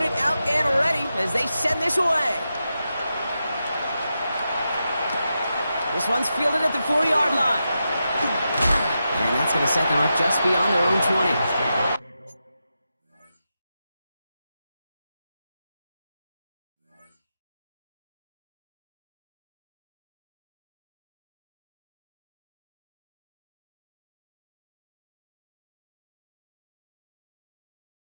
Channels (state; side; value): inverted; both; correlation -0.88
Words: out and ready as they send this away. This one's fielded at the 4-yard line. And that's going to set them up just beyond their own 20.